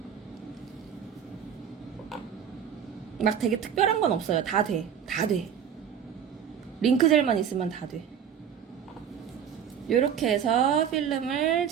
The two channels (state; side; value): quieter; left; 8.3 dB